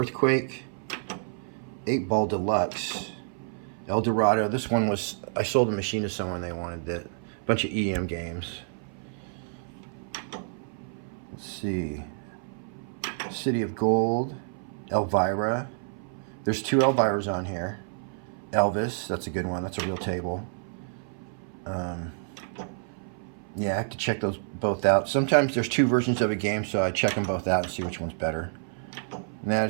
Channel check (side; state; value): left; silent; 56 dB below the other